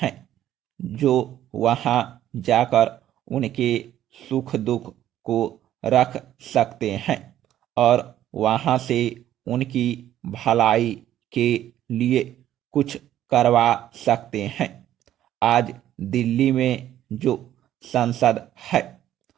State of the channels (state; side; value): quieter; left; 12.1 dB